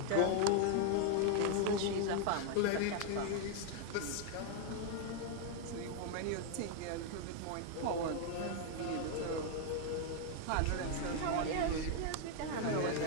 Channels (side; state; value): both; different; correlation 0.00